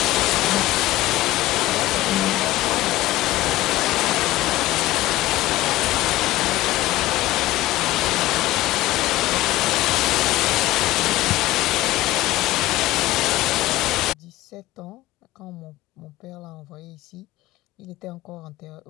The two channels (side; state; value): right; quieter; 16.9 dB